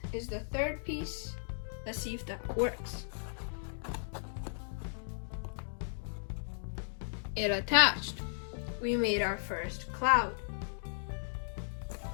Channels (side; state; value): right; silent; digital silence